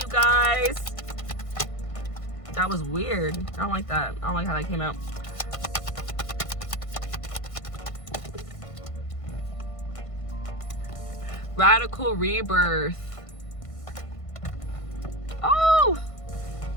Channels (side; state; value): right; late; 1.5 ms